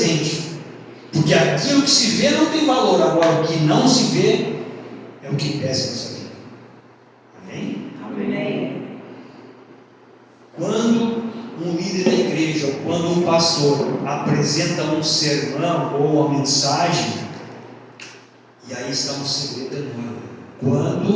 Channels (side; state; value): both; identical; correlation 1.00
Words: Porque aquilo que se vê não tem valor, agora o que não se vê é o que pesa em nossa vida. Amém? Amém. Quando um líder da igreja, ou quando um pastor apresenta um sermão ou uma mensagem, e aí está um segredo enorme.